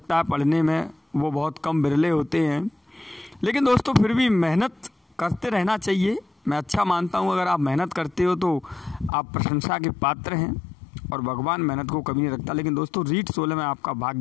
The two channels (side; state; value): right; drops out; at 9.1 s